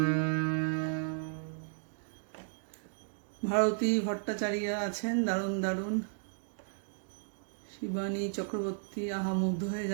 ভারতী ভট্টাচার্য আছেন, দারুণ দারুণ। শিবানী চক্রবর্তী, আহা মুগ্ধ হয়ে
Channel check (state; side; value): silent; left; digital silence